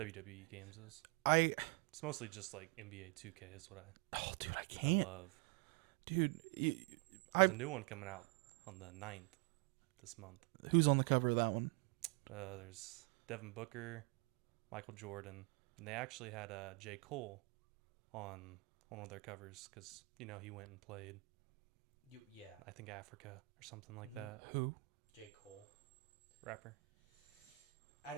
games. It's mostly just like NBA 2K is what Oh, dude, I can't. I love. Dude, there's a new one coming out on the 9th this month. Who's on the cover of that one? There's Devin Booker, Michael Jordan, and they actually had J. Cole on one of their covers because he went and played. Yeah, I think Africa or something like that. Who? J. Cole, rapper. I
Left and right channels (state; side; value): quieter; left; 26.9 dB